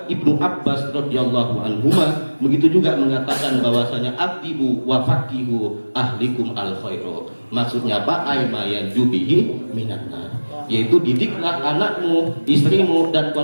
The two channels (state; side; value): inverted; both; correlation -1.00